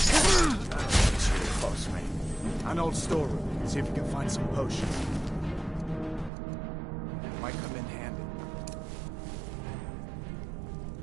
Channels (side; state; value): left; drops out; at 6.3 s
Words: It's really close, mate. An old storeroom. See if you can find some potions. Might come in handy.